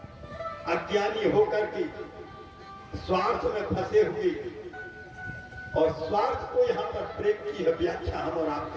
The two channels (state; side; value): identical; both; correlation 1.00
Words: अज्ञानी होकर के स्वार्थ में फंसे हुए, और स्वार्थ को यहाँ पर प्रेम की व्याख्या हम और आप